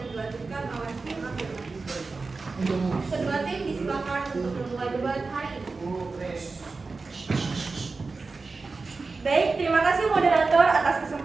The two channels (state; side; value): quieter; left; 4.0 dB